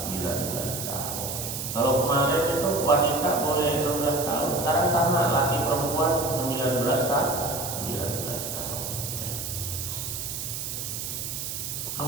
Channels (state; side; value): noise; right; hiss, 5 dB below the sound